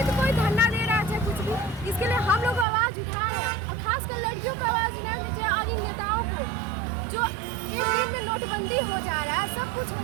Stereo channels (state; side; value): drops out; left; at 2.7 s